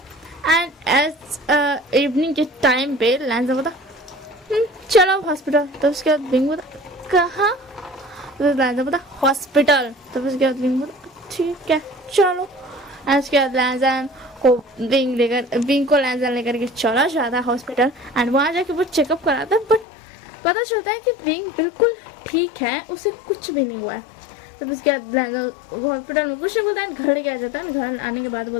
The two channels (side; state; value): right; drops out; at 19.9 s